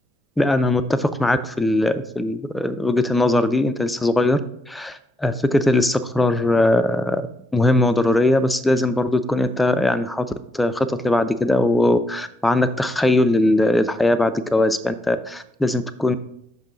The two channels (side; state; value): both; normal; correlation 0.80